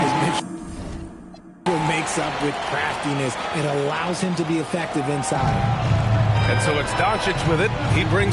Mitchell makes up with craftiness. It allows him to be effective inside. And so it's Doncic with it. He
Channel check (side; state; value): both; identical; correlation 1.00